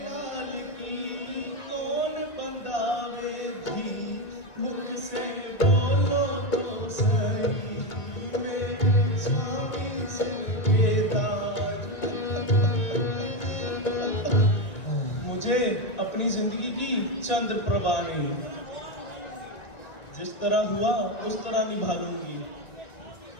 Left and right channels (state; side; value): late; right; 1.9 ms